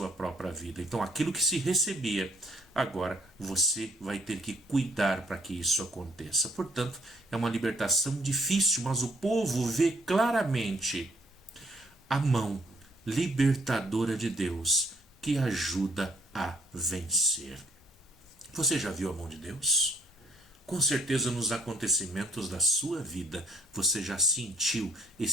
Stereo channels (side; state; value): both; normal; correlation 0.64